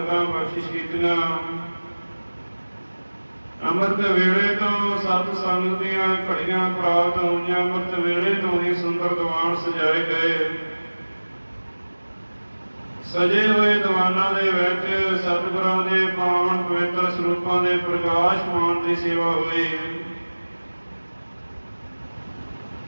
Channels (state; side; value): inverted; both; correlation -1.00